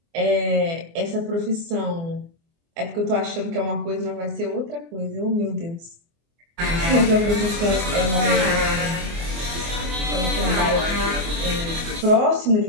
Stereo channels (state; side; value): late; left; 24 ms